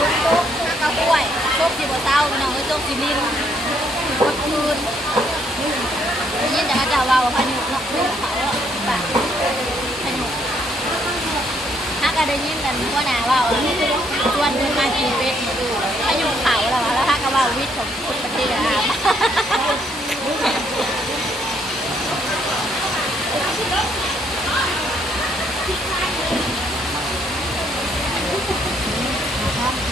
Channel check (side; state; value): both; normal; correlation 0.70